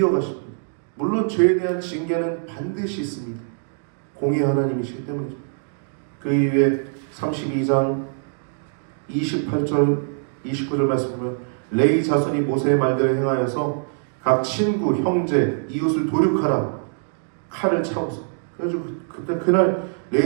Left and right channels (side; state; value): left; silent; digital silence